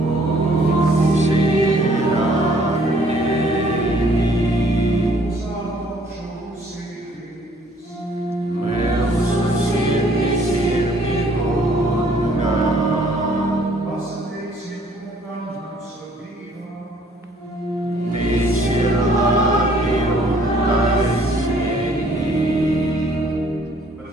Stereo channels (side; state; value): both; normal; correlation 0.61